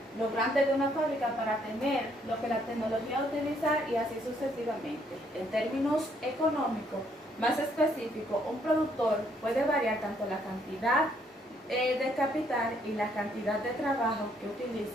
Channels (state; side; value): normal; both; correlation 0.69